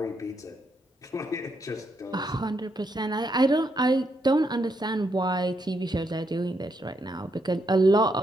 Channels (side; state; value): both; normal; correlation 0.78